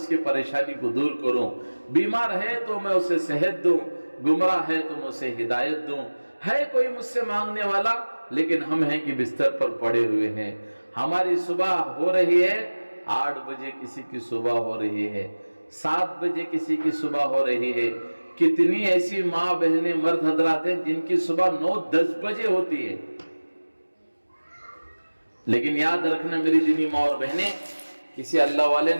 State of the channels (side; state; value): both; inverted; correlation -1.00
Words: کی پریشانی کو دور کروں، بیمار ہے تو میں اسے صحت دوں، گمراہ ہے تو میں اسے ہدایت دوں. ہے کوئی مجھ سے مانگنے والا، لیکن ہم ہیں کہ بستر پر پڑے ہوئے ہیں. ہماری صبح ہو رہی ہے 8 بجے، کسی کی صبح ہو رہی ہے 7 بجے، کسی کی صبح ہو رہی ہے. کتنی ایسی ماں بہنیں مرد حضرات ہیں جن کی صبح 9-10 بجے ہوتی ہے. لیکن یاد رکھنا میری دینی ماں اور بہنیں، کسی اللہ والے